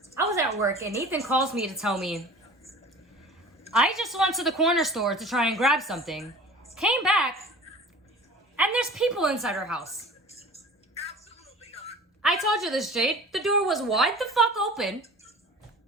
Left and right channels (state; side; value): normal; both; correlation 0.41